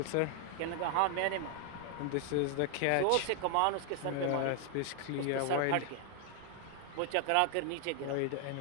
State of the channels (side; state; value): both; different; correlation 0.00